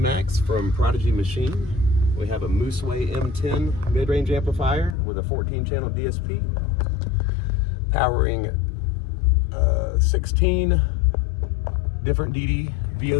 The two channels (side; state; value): right; drops out; at 5.0 s